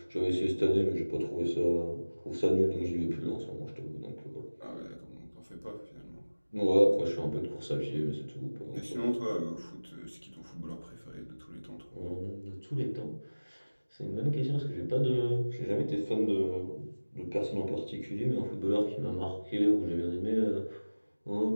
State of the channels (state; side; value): inverted; both; correlation -1.00